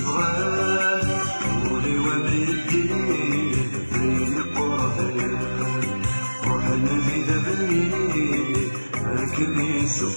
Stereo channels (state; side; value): inverted; both; correlation -1.00